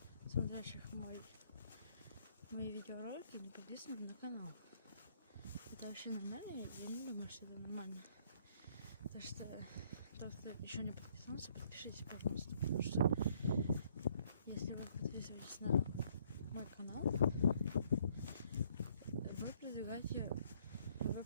смотрящих мои видеоролики не подписаны на канал. Это вообще нормально? Я не думаю, что это нормально. Потому что тот, кто еще не подписался, подпишитесь, пожалуйста. Потому что если вы подписываетесь на мой канал, вы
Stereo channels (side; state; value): both; inverted; correlation -0.65